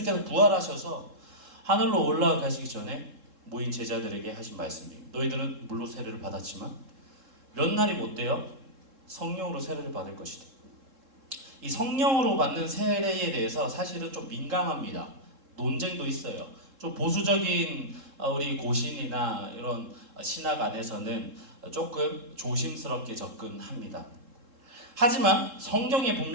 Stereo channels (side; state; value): left; late; 3.7 ms